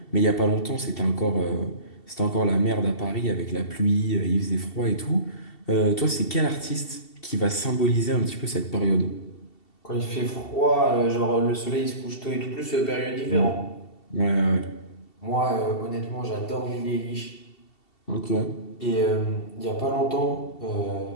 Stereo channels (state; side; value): late; right; 2.7 ms